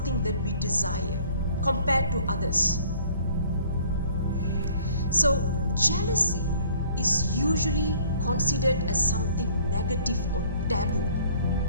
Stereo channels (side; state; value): both; inverted; correlation -0.55